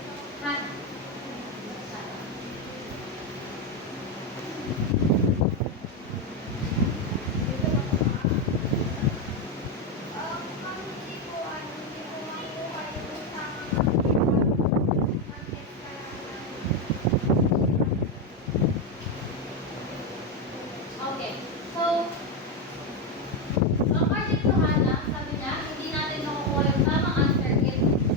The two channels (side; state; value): both; normal; correlation 0.08